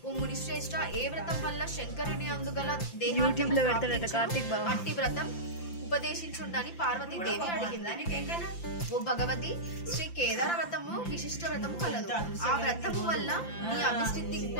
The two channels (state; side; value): late; right; 5.8 ms